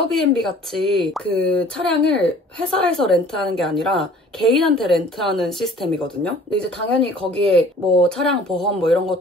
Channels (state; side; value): normal; both; correlation 0.51